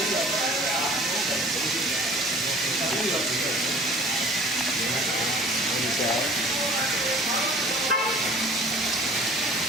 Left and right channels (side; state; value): both; normal; correlation 0.48